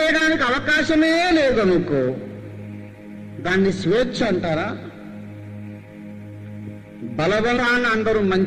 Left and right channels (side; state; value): both; identical; correlation 1.00